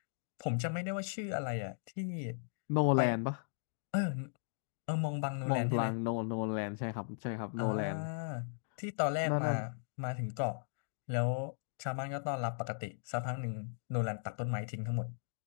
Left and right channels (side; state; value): right; silent; digital silence